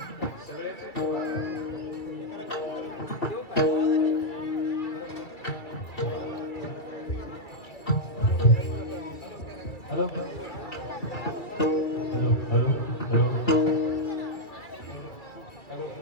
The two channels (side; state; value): right; late; 2.3 ms